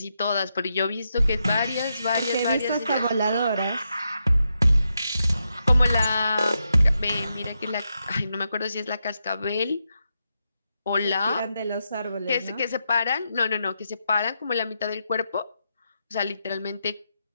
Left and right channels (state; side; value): inverted; both; correlation -0.84